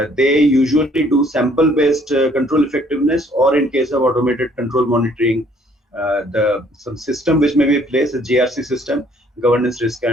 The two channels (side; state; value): both; normal; correlation 0.62